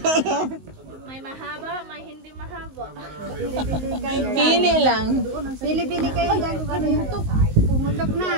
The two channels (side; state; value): left; late; 19 ms